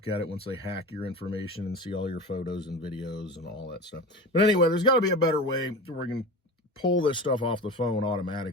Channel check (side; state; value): both; normal; correlation 0.30